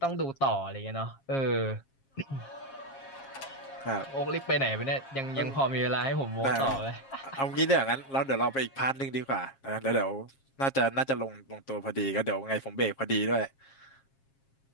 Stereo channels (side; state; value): right; late; 7.4 ms